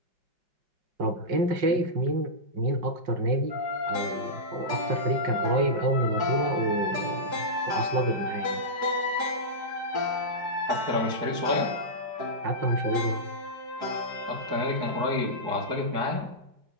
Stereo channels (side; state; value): left; late; 5.5 ms